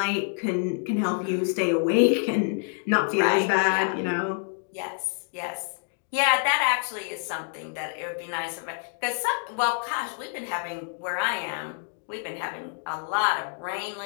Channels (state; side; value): silent; right; 57 dB below the other